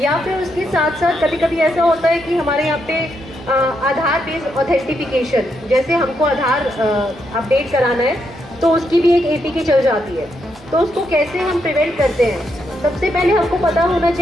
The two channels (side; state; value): both; normal; correlation 0.79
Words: फिर उसके साथ साथ कभी कभी ऐसा होता है कि हमारे यहाँ पे आधार बेस्ड ऑथेंटिफिकेशन, जैसे हमको आधार अपडेट कराना है तो उसकी भी एक एपीके चल जाती है। तो उसको कैसे हम प्रिवेंट करते हैं, सबसे पहले हमको पता होना